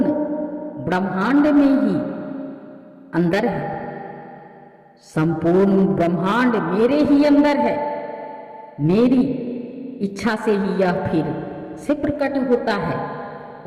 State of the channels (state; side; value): identical; both; correlation 1.00